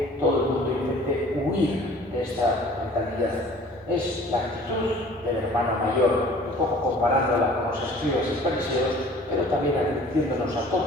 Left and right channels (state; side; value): normal; both; correlation 0.49